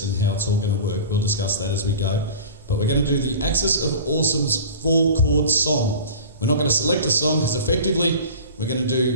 and how it's all going to work. We'll discuss that as we go. But we're going to do the Axis of Awesome's 4-chord song. We're not going to select a song because effectively we're going to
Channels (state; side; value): inverted; both; correlation -0.37